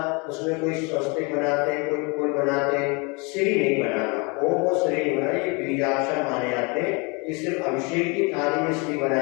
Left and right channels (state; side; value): quieter; right; 29.9 dB